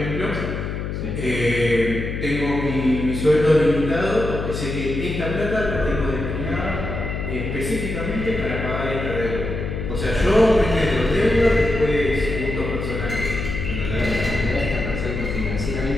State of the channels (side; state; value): left; noise; hum, 4 dB below the sound